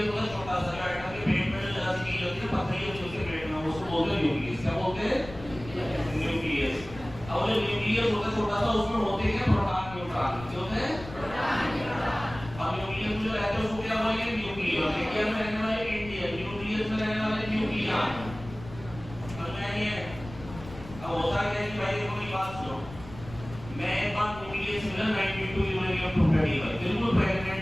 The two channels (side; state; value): left; noise; rumble, 15 dB below the sound